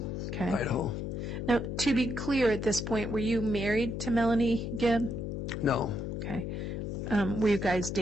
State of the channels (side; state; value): left; noise; hum, 4 dB below the sound